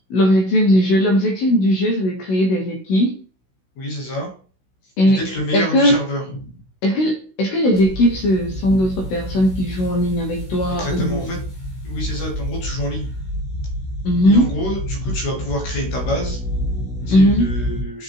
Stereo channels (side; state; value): right; late; 16 ms